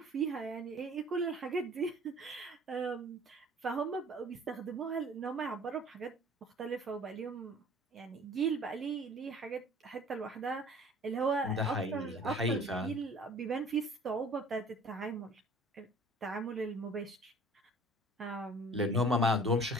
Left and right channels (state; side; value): normal; both; correlation 0.49